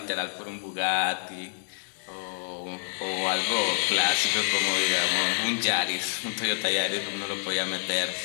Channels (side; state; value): right; silent; 58 dB below the other